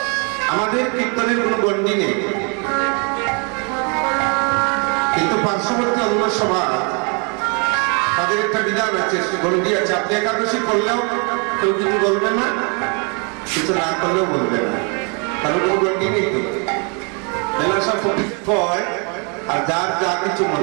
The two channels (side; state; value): left; quieter; 35.7 dB